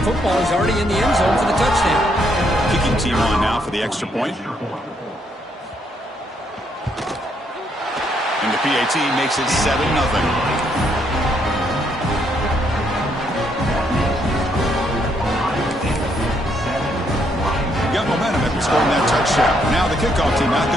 football. He's already in the end zone for the touchdown. Kicking team on now for the extra point. And the PAT makes it 7-0. Got momentum after scoring that touchdown. Now the kickoff team out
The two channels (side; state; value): both; normal; correlation 0.73